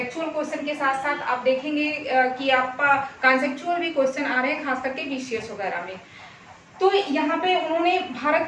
क्वेश्चन के साथ साथ आप देखेंगे कि आपका कॉन्सेप्चुअल भी क्वेश्चन आ रहे हैं, खास करके बीसीएस वगैरह में। तो यहाँ पे उन्होंने भारत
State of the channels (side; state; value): both; identical; correlation 1.00